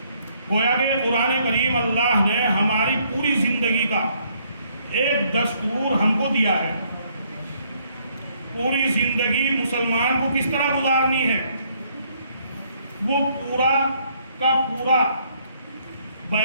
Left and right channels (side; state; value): both; inverted; correlation -0.68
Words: گویا کہ قرآن کریم اللہ نے ہماری پوری زندگی کا ایک دستور ہم کو دیا ہے، پوری زندگی مسلمان کو کس طرح گزارنی ہے وہ پورا کا پورا